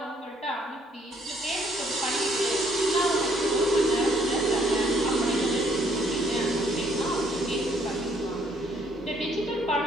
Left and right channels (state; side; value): normal; both; correlation 0.66